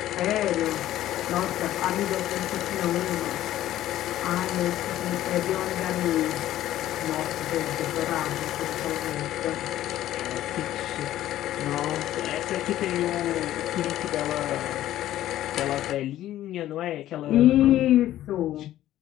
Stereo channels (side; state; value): right; quieter; 13.5 dB